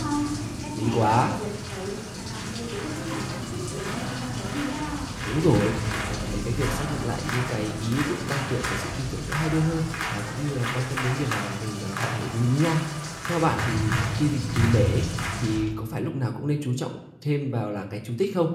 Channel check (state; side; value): identical; both; correlation 1.00